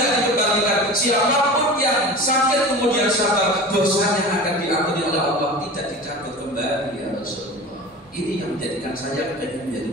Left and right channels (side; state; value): both; normal; correlation 0.34